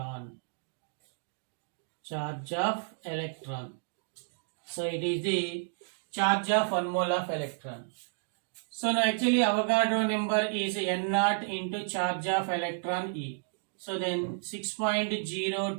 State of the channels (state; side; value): silent; left; digital silence